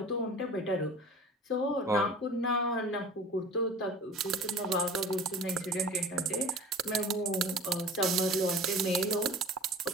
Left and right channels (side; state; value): both; normal; correlation 0.41